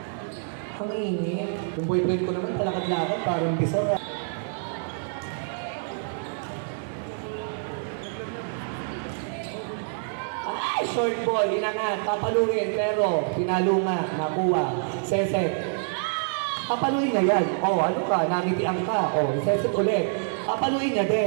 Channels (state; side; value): silent; left; digital silence